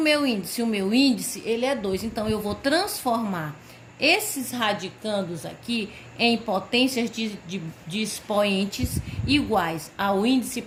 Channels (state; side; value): identical; both; correlation 1.00